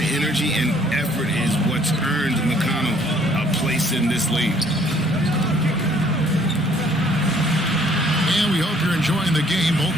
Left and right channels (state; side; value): normal; both; correlation 0.61